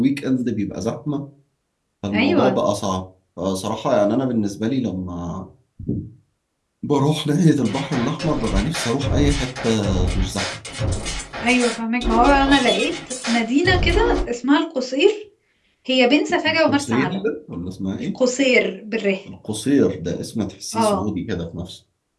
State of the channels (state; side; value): identical; both; correlation 1.00